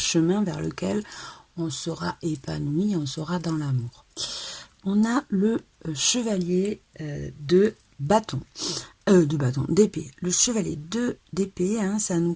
vers lequel on sera épanoui, on sera dans l'amour. On a le chevalier d'épée. Le chevalier d'épée, hein, ça nous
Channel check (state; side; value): identical; both; correlation 1.00